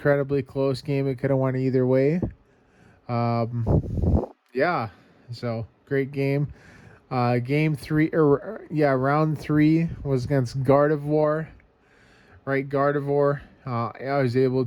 close game. It could have went either way. Yeah. So great game. Game 3, round 3 was against Gardevoir. Right, Gardevoir. I was able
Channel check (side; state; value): both; identical; correlation 1.00